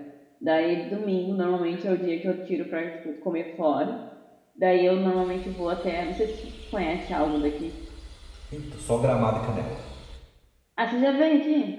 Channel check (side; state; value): both; identical; correlation 1.00